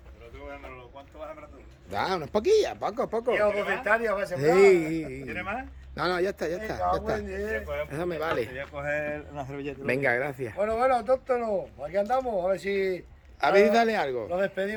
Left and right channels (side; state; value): both; identical; correlation 1.00